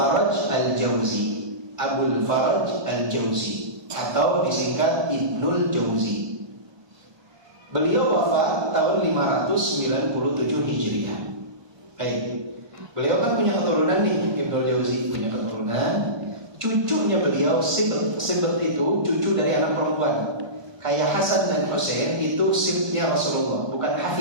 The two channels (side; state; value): left; late; 1.2 ms